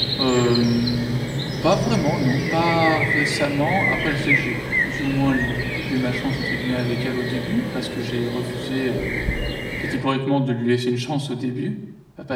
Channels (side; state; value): both; identical; correlation 1.00